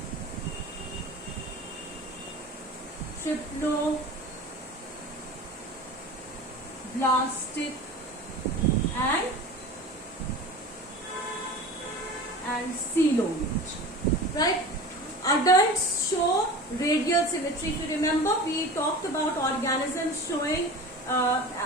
triploblastic and coelomate. Right? Adults show radial symmetry. If you remember, we talked about organisms showing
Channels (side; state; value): both; normal; correlation 0.35